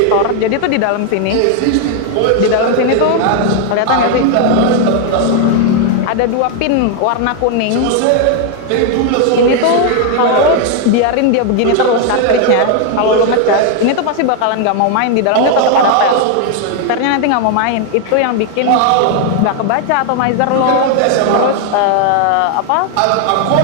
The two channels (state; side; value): different; both; correlation 0.00